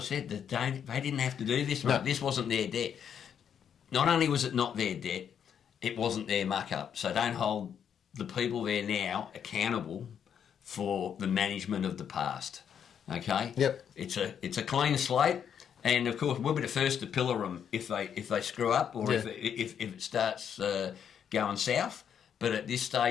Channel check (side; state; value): right; quieter; 8.3 dB